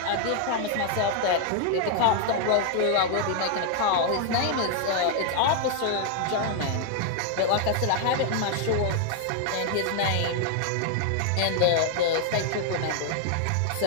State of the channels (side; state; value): both; different; correlation 0.00